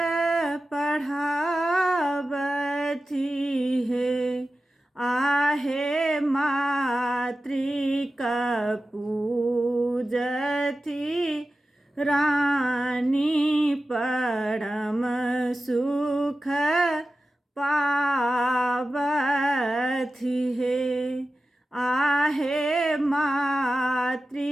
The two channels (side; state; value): both; normal; correlation 0.94